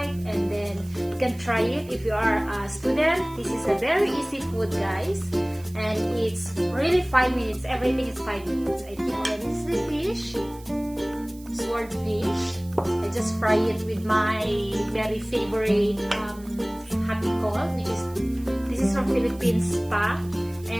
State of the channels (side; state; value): right; noise; hiss, 23 dB below the sound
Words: and then you can try it if you are a student. This is a very easy food, guys, and it's really 5 minutes. Everything is 5 minutes. I think this is the fish, swordfish. I just fry it with my very favorite happy call, which is this is from Philippines pa,